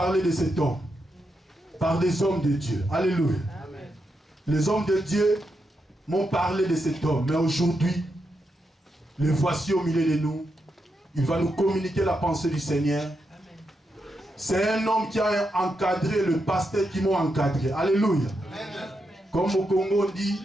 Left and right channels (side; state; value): both; normal; correlation 0.84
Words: de cet homme par des hommes de Dieu. Alléluia. Les hommes de Dieu m'ont parlé de cet homme. Mais aujourd'hui, le voici au milieu de nous. Il va nous communiquer la pensée du Seigneur. C'est un homme qui a encadré le pasteur qui m'a encadré. Alléluia. Comme au Congo on dit,